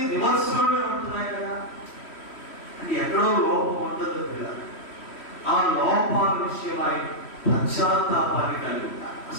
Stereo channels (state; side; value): late; right; 3.1 ms